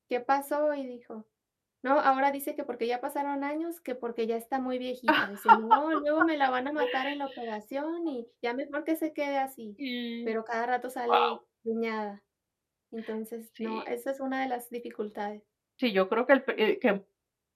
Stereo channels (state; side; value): identical; both; correlation 1.00